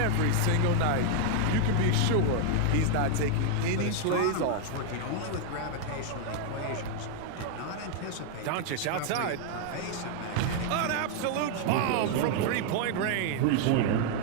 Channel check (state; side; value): different; both; correlation 0.00